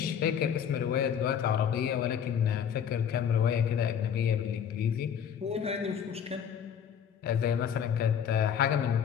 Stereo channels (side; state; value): right; quieter; 8.2 dB